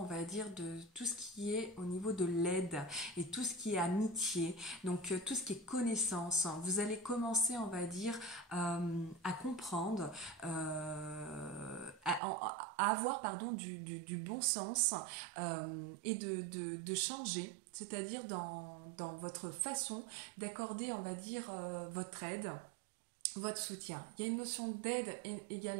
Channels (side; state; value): left; drops out; at 12.2 s